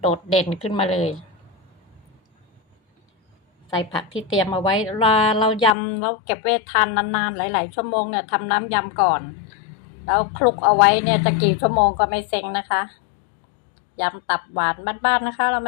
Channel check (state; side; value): drops out; right; at 5.8 s